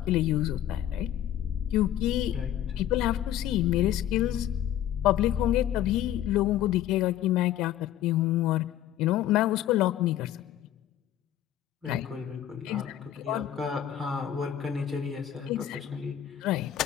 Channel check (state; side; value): quieter; right; 11.6 dB